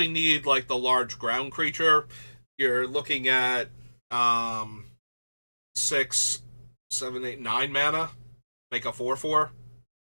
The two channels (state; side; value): inverted; both; correlation -1.00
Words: need, like, the large ground creature, you're looking at 6, 7, 8, 9 mana, make a 4/4